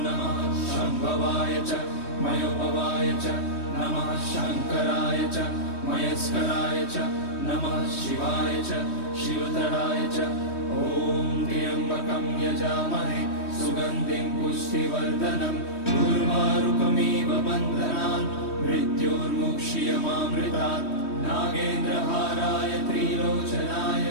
नमः शम्भवाय च मयोभवाय च नमः शङ्कराय च मयस्कराय च नमः शिवाय च शिवतराय च। ॐ त्र्यम्बकं यजामहे सुगन्धिं पुष्टिवर्धनम् उर्वारुकमिव बन्धनान् मृत्योर्मुक्ष्यमामृतात्। नागेन्द्रहाराय त्रिलोचनाय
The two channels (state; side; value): late; right; 3.1 ms